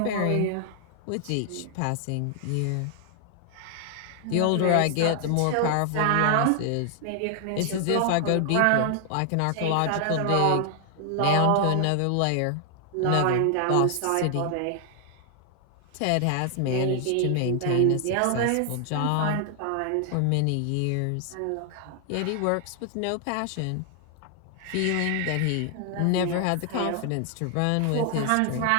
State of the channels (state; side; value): different; both; correlation 0.00